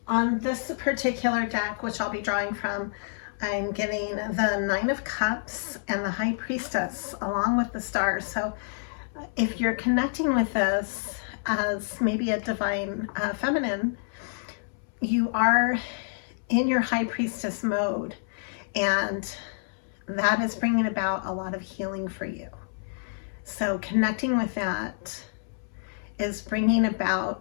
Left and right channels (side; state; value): right; silent; 59 dB below the other